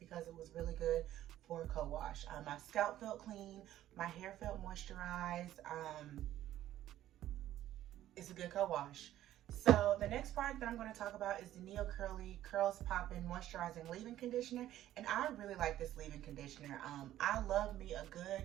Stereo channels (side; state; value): left; quieter; 13.1 dB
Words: it was really good for a co-wash. My scalp felt clean, my hair felt moisturized. It's a good co-wash. So the next product that I'm going to talk about is the NeoCurly Curls Poppin' Moisturizing Leave-In Conditioner, and I really like this leave-in conditioner. I love me a good,